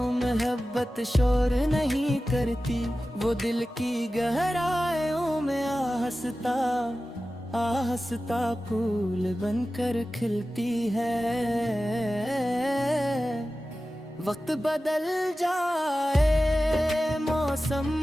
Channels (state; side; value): normal; both; correlation 0.95